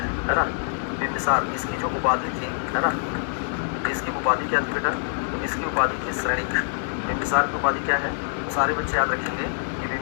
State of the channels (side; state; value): right; silent; digital silence